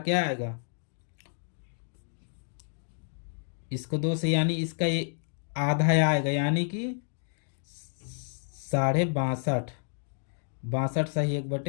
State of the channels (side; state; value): right; silent; digital silence